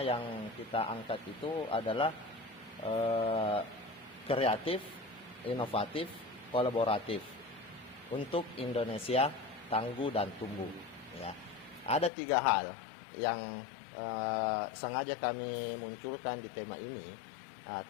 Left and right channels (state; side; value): drops out; right; at 12.1 s